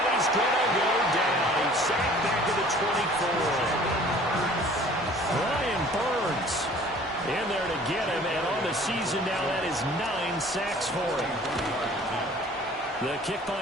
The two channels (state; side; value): normal; both; correlation 0.50